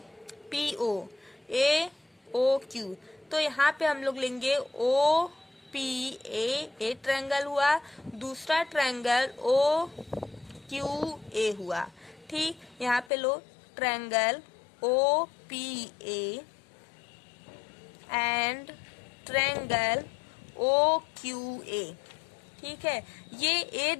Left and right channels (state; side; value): drops out; right; at 13.1 s